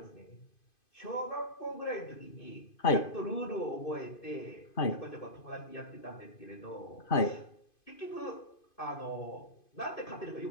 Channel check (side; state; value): right; late; 2.5 ms